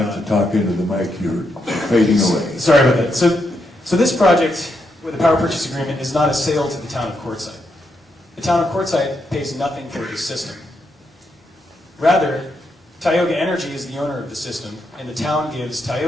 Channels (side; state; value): both; normal; correlation 0.81